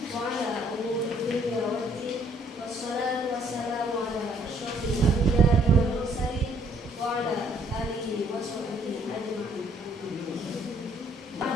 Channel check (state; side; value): normal; both; correlation 0.65